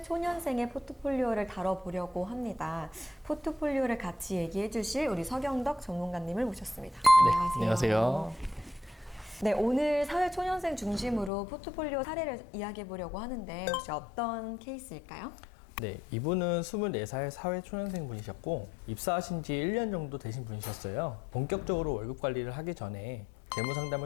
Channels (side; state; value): right; drops out; at 11.3 s